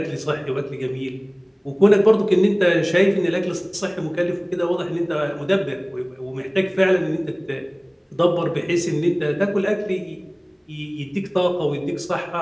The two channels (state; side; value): identical; both; correlation 1.00